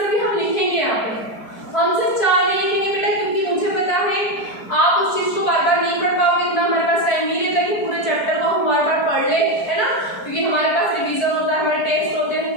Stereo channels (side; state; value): right; late; 4.6 ms